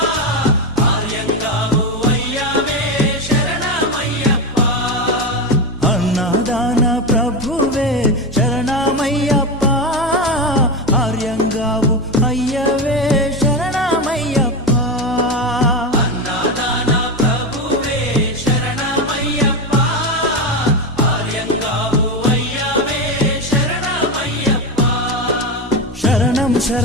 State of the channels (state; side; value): normal; both; correlation 0.16